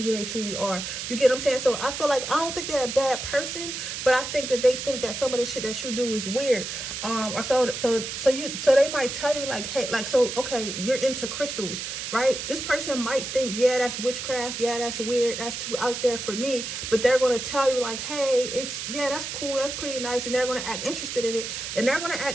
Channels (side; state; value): right; noise; hiss, 6 dB below the sound